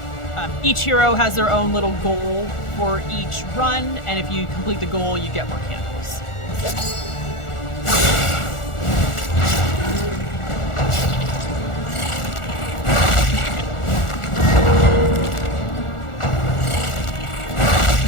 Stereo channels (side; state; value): right; late; 1.4 ms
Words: Each hero has their own little goal for each run, and if you complete the goal, you get more candles.